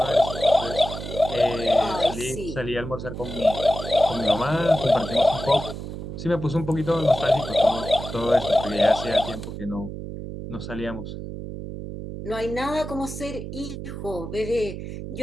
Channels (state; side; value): noise; right; hum, 8 dB below the sound